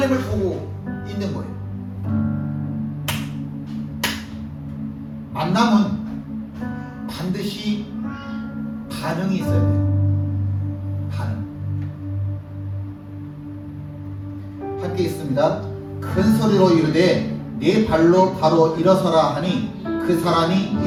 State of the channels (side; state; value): both; identical; correlation 1.00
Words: 보고 있는 거예요. 만남은 반드시 반응이 있어야 돼요. 반응. 함께 있습니다. 큰 소리로 이르되 네 발로 바로 일어서라 하니 그 사람이